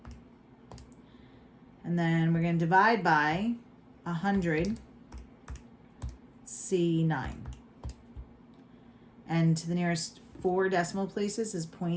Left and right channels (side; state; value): both; identical; correlation 1.00